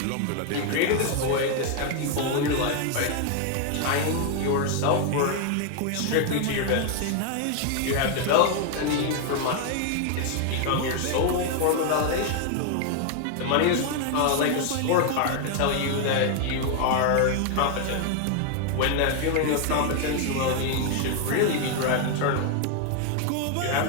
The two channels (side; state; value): both; different; correlation 0.01